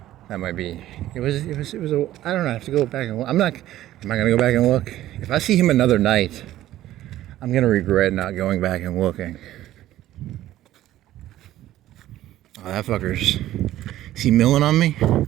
That might be. It was a, I don't know, I have to go back and look. Am I gonna go back and look? If I see him another night, I'm gonna regret not going back and looking. Oh, that fucker's... Is he milling on me?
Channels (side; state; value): left; quieter; 14.0 dB